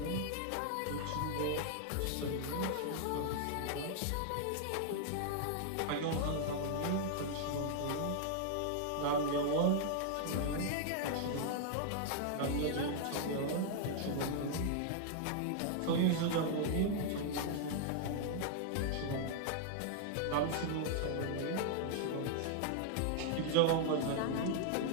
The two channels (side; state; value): both; different; correlation -0.01